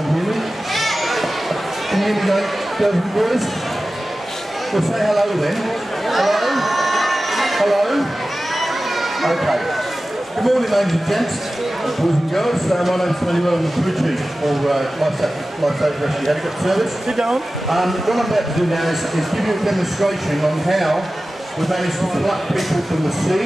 hear me? Can you hear me, girls and boys? Well, say hello then. Hello? Hello? Okay. Good morning, ladies and gents, boys and girls. My name's Tony. I'm the crew chief for Lifesaver Rescue Helicopter Service. Sit down. What I'm about to do now is give you a demonstration on how we managed to pluck people from the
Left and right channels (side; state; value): both; normal; correlation 0.95